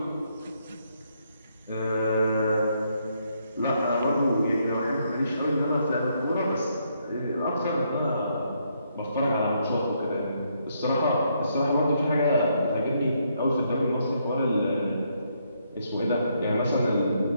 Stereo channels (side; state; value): both; inverted; correlation -0.74